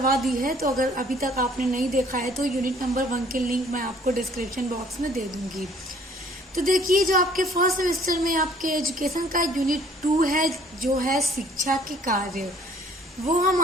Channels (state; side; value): normal; both; correlation 0.57